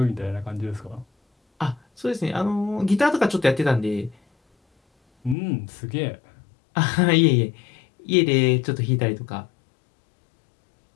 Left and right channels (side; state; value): right; drops out; at 5.4 s